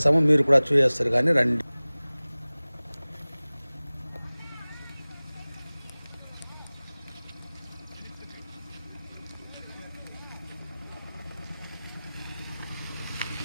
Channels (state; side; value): inverted; both; correlation -0.99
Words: మీరు కూడా చూసేస్తారు, కానీ రండి.